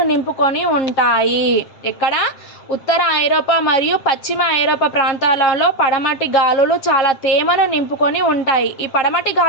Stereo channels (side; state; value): right; late; 7.4 ms